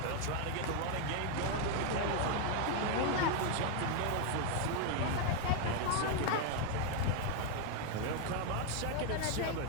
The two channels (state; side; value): different; both; correlation 0.01